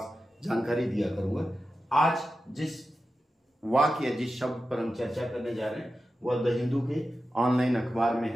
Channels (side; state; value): both; normal; correlation 0.92